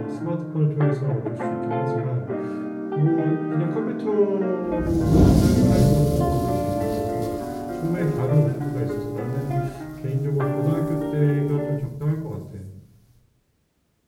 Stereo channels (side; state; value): both; identical; correlation 1.00